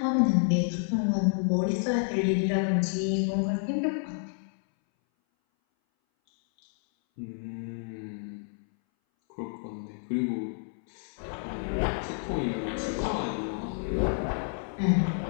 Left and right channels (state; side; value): silent; right; 58 dB below the other